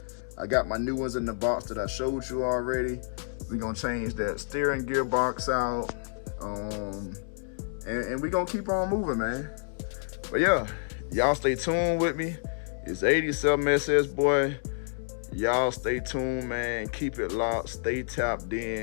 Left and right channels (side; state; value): right; silent; 58 dB below the other